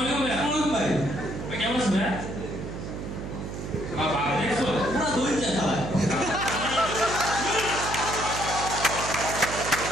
আলাইকুম ভাই। আসসালামু ভাই। ভাই কেমন আছেন ভাই? বাবা দেখছো পুরো দই চা খায়।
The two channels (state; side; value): noise; right; hum, 7 dB below the sound